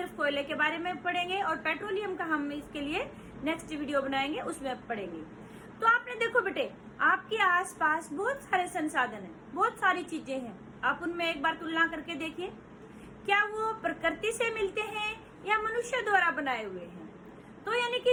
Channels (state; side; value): identical; both; correlation 1.00